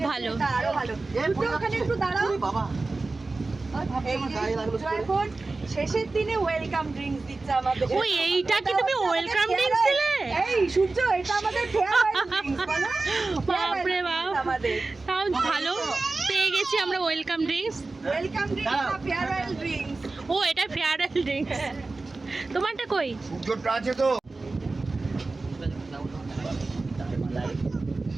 ভালো। এটা আরো ভালো। একটু ওখানে একটু দাঁড়াও। এই যে এখন শেষের দিনে ওয়েলকাম ড্রিঙ্কস দিচ্ছে আমাদের। ওই এইটা কি তুমি ওয়েলকাম ড্রিঙ্কস দিলে? এই সূর্য, এটা আমাদের ফেয়ারওয়েল ড্রিঙ্কস বলো। বাপরে বাপ, আমাদের তাও ভালো পেয়ে গেছি আমরা ওয়েলকাম ড্রিঙ্কস। ওয়েলকাম ড্রিঙ্কস না ফেয়ারওয়েল ড্রিঙ্কস। ও এটা ফেয়ারওয়েল ড্রিঙ্কস। তোমারটা কই? সূর্যটা আছে তো।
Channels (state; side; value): quieter; left; 3.5 dB